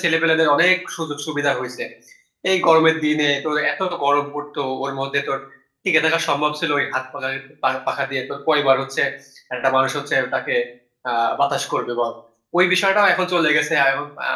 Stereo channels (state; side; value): identical; both; correlation 1.00